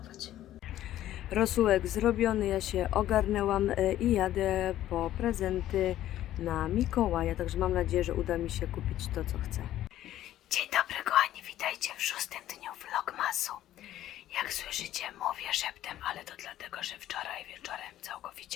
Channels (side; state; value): right; quieter; 13.1 dB